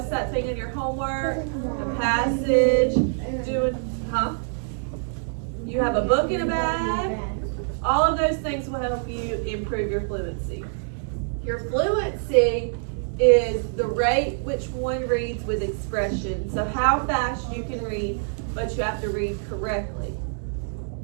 that thing in your homework? A passage, You have a book in a bag. All of those things will help you improve your fluency. Your fluency is the rate which one reads with expression. So how fast you can read, but you have to read correctly.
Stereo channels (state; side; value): silent; left; 62 dB below the other